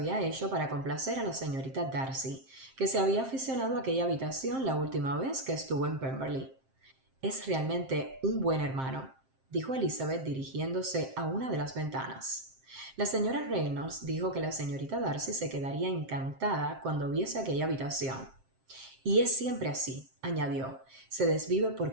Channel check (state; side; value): late; left; 7.6 ms